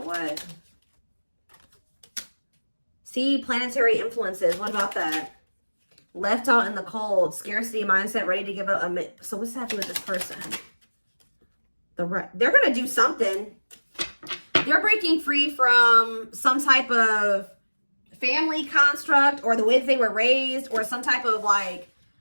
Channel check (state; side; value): inverted; both; correlation -1.00